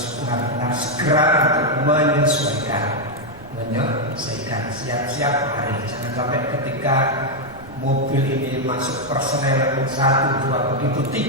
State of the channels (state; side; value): noise; right; rumble, 21 dB below the sound